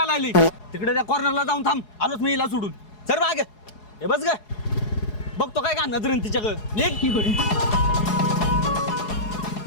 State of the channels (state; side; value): late; right; 4.8 ms